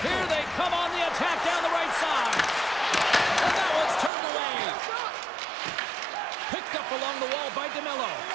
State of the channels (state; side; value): drops out; left; at 4.1 s